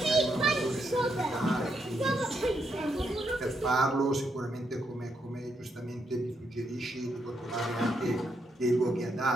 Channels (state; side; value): normal; both; correlation 0.79